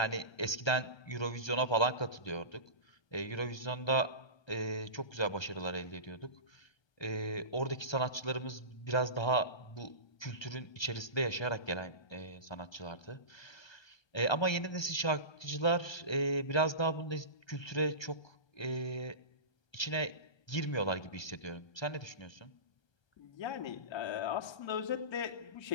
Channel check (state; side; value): late; right; 1.3 ms